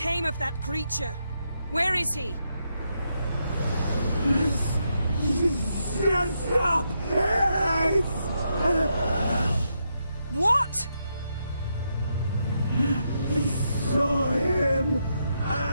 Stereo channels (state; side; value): inverted; both; correlation -0.81